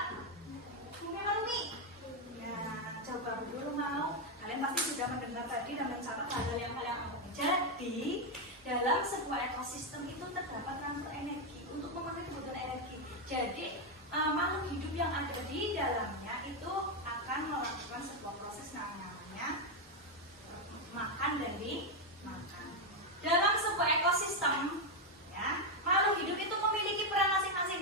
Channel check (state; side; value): normal; both; correlation 0.04